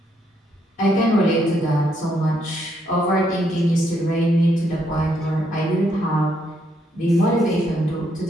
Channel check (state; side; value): normal; both; correlation 0.74